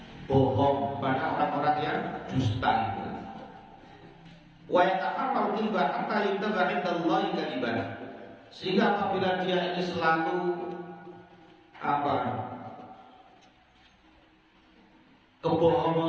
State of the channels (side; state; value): both; identical; correlation 1.00